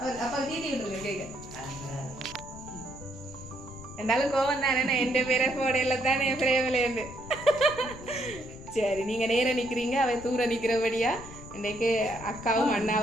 அப்பா தீட்டி விட்டுருங்க கேட்க இருந்தாலும் கோவம் தானே என் பேரை போடையில தானே என் பிரேமிலேருந்து சரி நீங்க நேரம் நிக்கிறீங்க அவை தூர நிக்கிறபடியா இன்றைக்கு அக்காவும்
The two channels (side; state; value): left; noise; rumble, 16 dB below the sound